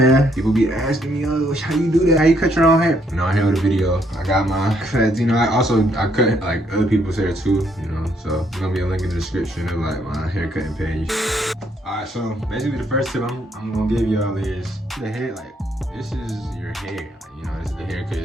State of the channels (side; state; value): both; normal; correlation 0.71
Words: people be asking me, oh, how you do that? How you cut your own hair? And on here with a video, I got my cuts. You know, I cut like other people's hair too, you know. So there's gonna be a link in the description of like my hair cutting page. All right, so basically the first tip I'm gonna give y'all is the hair, like, this is your hair. You know, this is the haircut.